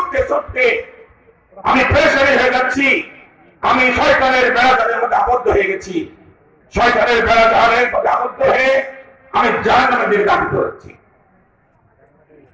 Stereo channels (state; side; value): identical; both; correlation 1.00